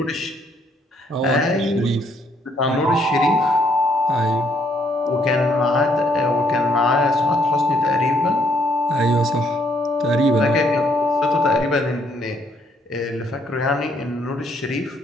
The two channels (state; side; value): normal; both; correlation 0.69